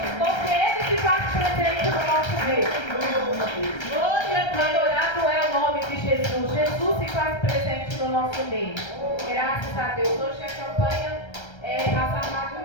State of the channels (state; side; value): late; right; 1.3 ms